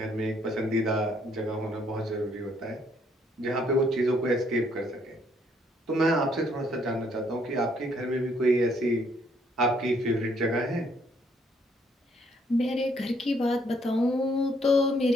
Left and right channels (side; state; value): both; normal; correlation 0.68